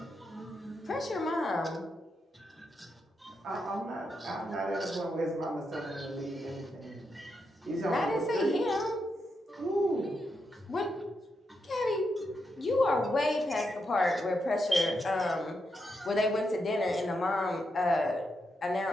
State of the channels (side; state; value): both; normal; correlation 0.84